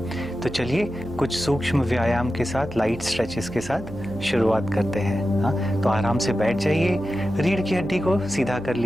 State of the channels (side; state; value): right; noise; hum, 15 dB below the sound